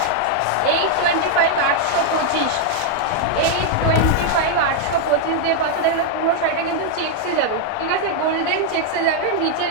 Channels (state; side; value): different; both; correlation 0.00